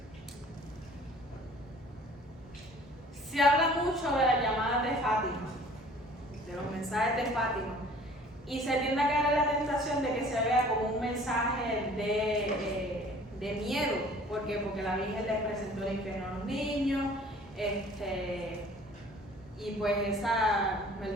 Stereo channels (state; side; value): normal; both; correlation 0.51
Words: Se habla mucho de las llamadas de Fátima, de los mensajes de Fátima, y se tiende a caer en la tentación de que se vea como un mensaje de miedo. ¿Por qué? Porque la Virgen les presentó el infierno a los niños, y pues esa,